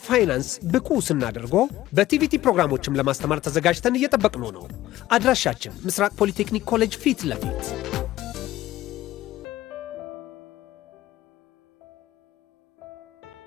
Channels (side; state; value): right; quieter; 15.2 dB